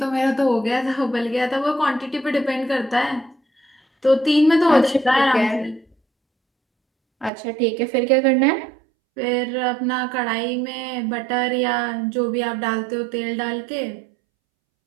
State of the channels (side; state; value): left; drops out; at 7.3 s